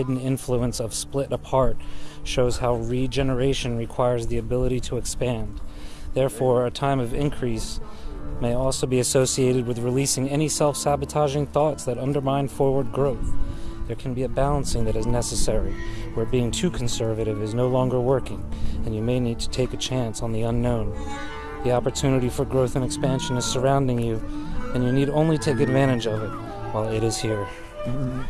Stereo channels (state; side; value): identical; both; correlation 1.00